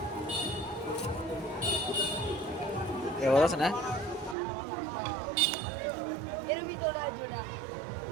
এবার আছে না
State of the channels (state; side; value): drops out; left; at 4.4 s